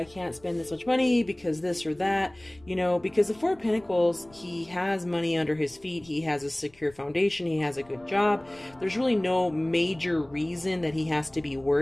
can't spend this much money because this or that, you know, because the 4 of Pentacles, he has money under his feet. He has a secure foundation. He has a good job. There's really no major reason that he has to be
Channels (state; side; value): noise; left; rumble, 28 dB below the sound